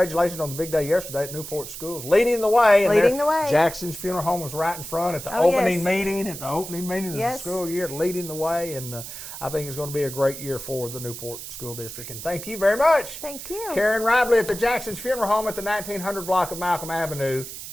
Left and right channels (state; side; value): noise; right; hiss, 10 dB below the sound